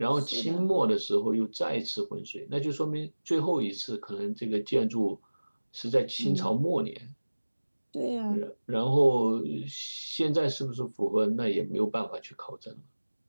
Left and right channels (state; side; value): inverted; both; correlation -1.00